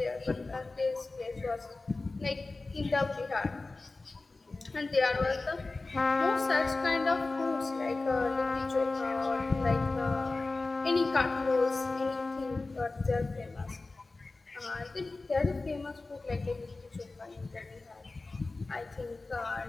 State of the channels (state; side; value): quieter; right; 3.5 dB